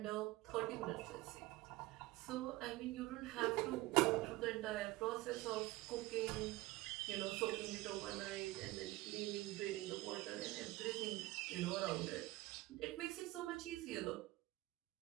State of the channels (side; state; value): left; quieter; 19.2 dB